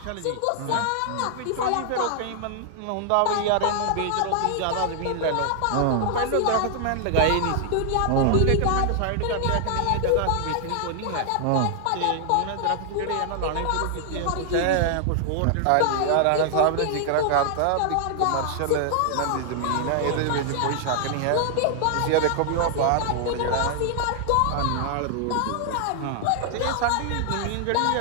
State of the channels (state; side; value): different; both; correlation 0.00